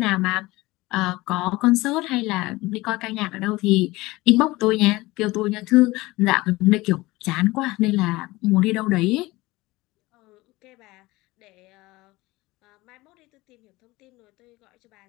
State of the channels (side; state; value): right; quieter; 20.3 dB